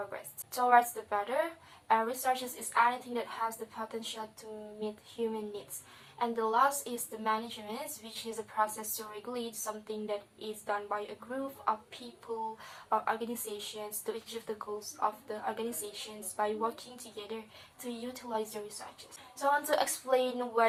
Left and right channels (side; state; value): both; identical; correlation 1.00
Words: towards the better. And resources is anything that has the potential to meet human needs. And the last is the management, which is a process to regulate something that is done by a group of people or organizations to achieve the goals of the organizations by working together to utilize the resources. So I want to explain